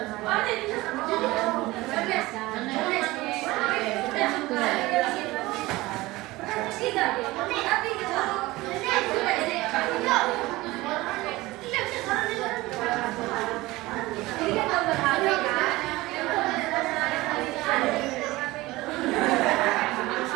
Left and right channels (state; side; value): quieter; left; 19.7 dB